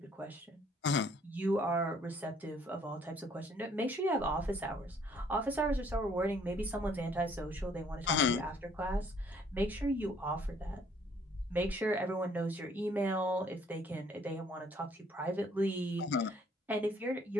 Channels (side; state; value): both; normal; correlation 0.62